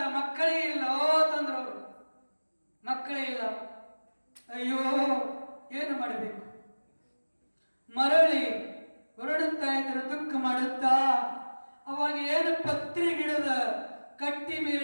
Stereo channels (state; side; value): inverted; both; correlation -1.00